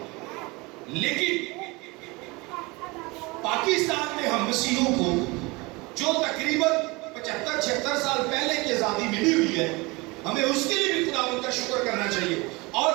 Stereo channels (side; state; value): left; quieter; 24.9 dB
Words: لیکن پاکستان میں ہم مسیحوں کو جو تقریباً 75-76 سال پہلے کی آزادی ملی ہوئی ہے، ہمیں اس کے لیے بھی خداوند کا شکر کرنا چاہیے، اور